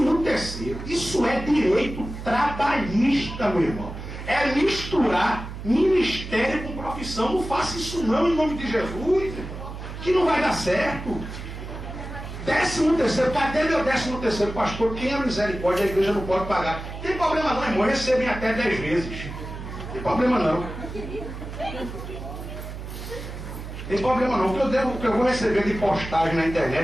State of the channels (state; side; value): noise; right; hum, 9 dB below the sound